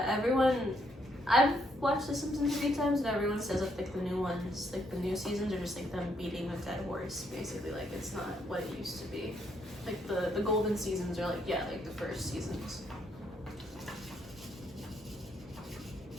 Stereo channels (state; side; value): normal; both; correlation 0.73